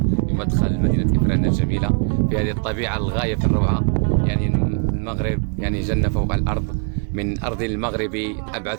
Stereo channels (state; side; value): quieter; left; 36.3 dB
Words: في مدخل مدينة إفران الجميلة، في هذه الطبيعة الغاية في الروعة. يعني المغرب يعني جنة فوق الأرض. من أرض المغرب